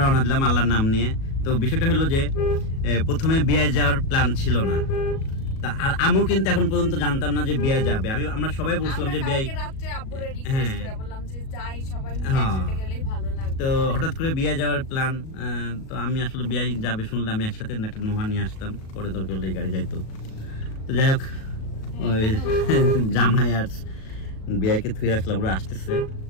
দিলাম আল্লাহর নাম নিয়ে তো বিষয়টা হলো যে প্রথমে বিয়ে যাওয়ার প্ল্যান ছিল না আর আমিও কিন্তু এখন পর্যন্ত জানতাম না যে বিয়ে যাবে আমরা সবাই বলছিলাম যে বিয়ে তো হঠাৎ করে বিয়ে যাওয়ার প্ল্যান তো আমি আসলে বিয়ে যাবে শুনলে আমি একসাথে একটা নোহা নিয়ে আসতাম পরে দরকার হলে গাড়ি যাইতো তো যাই হোক ওই জামাই আর বিয়াকে থুয়ে আসলাম ওরা আসতেছে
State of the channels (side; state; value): right; late; 37 ms